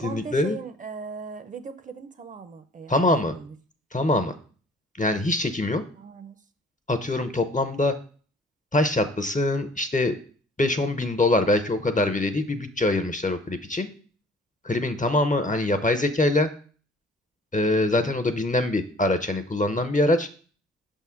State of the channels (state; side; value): normal; both; correlation 0.53